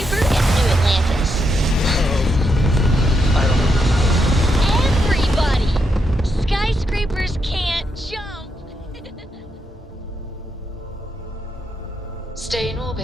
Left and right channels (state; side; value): normal; both; correlation 0.81